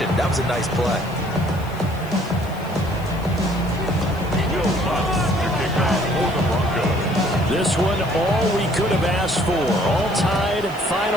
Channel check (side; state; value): left; noise; hiss, 22 dB below the sound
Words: That was a nice play. This one, all we could have asked for. All tied,